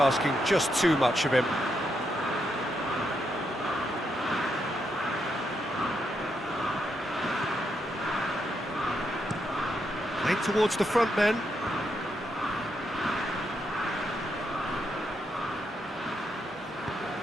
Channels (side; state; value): both; normal; correlation 0.81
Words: just too much of him. towards the front men.